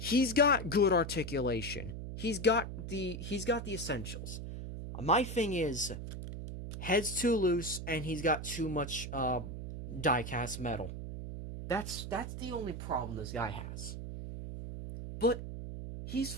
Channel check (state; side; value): noise; right; hum, 7 dB below the sound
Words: got good articulation. He's got the essentials. My thing is, head's too loose and he's got too much die-cast metal. That's the only problem this guy has. But he's